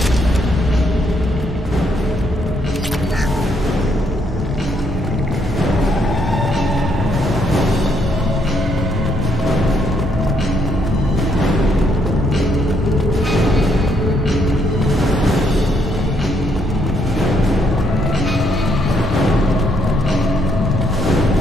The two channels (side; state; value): both; normal; correlation 0.72